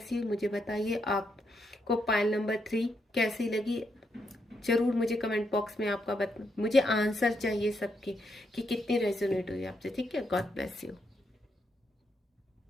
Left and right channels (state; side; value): normal; both; correlation 0.79